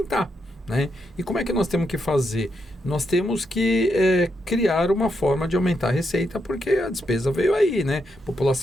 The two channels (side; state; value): both; normal; correlation 0.81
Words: Né? E como é que nós temos que fazer? Nós temos que criar uma forma de aumentar a receita, porque a despesa veio aí, né? A